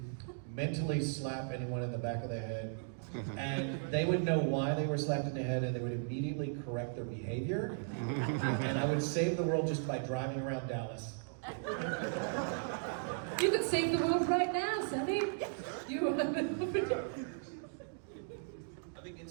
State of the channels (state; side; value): silent; left; digital silence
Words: mentally slap anyone in the back of the head, and they would know why they were slapped in the head, and they would immediately correct their behavior, and I would save the world just by driving around Dallas. You could save the world right now, Sonny. You I think